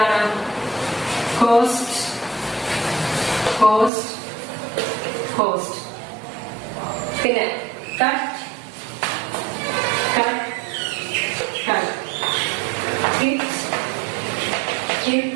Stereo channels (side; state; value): left; drops out; at 3.9 s